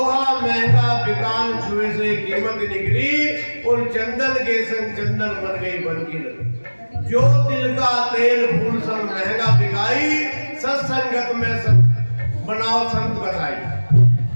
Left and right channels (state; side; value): inverted; both; correlation -1.00